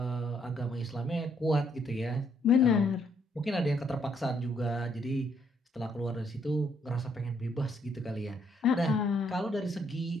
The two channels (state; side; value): normal; both; correlation 0.71